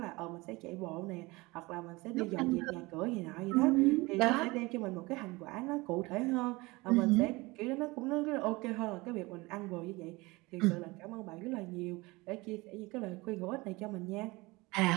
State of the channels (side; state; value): left; quieter; 23.0 dB